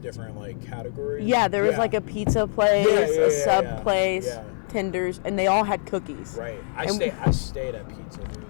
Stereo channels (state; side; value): silent; right; 62 dB below the other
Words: different like categories? Yeah, there was like a pizza place, a sub place, tenders, and they all had cookies. Right. I stayed at pizza, dude.